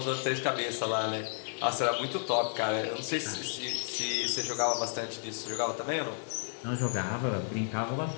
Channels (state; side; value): silent; right; 56 dB below the other